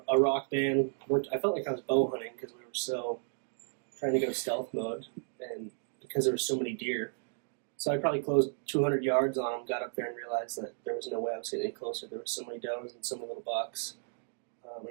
rock band. I felt like I was bow hunting because we were so trying to go stealth mode, and because there were so many deer. So I probably closed 200 yards on him, got up there and realized that there was no way I was getting any closer. There were so many does and so many little bucks. And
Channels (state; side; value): silent; left; 55 dB below the other